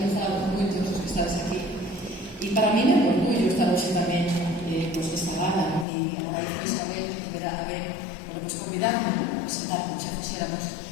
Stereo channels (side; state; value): right; drops out; at 5.9 s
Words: nos fala con moitos dos que estades aquí. E para mí é un orgullo estar hoxe tamén pues, desta gala, ¿no? E agradezo Isabel que verá a ver, bueno, pues convidarme a presentar, xa fixéramos